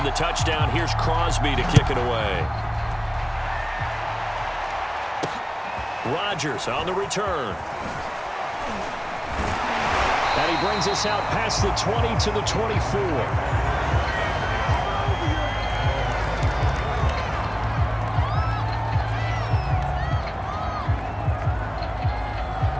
touchdown, here's Crosby to kick it away. Rodgers on the return. And he brings us out past the 20 to the 24.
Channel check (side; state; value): both; identical; correlation 1.00